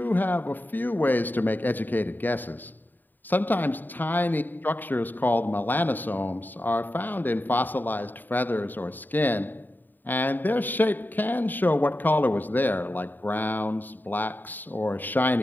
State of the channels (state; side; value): late; right; 0.090 ms